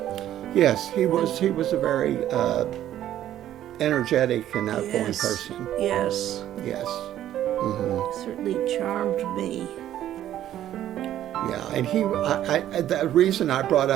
Yes, he was a very energetic and outgoing Yes. person. Yes, Yes. certainly charmed me. Yeah, and the reason I brought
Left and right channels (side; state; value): left; quieter; 12.1 dB